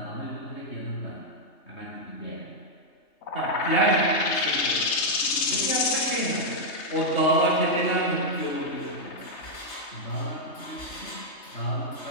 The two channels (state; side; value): late; right; 3.2 ms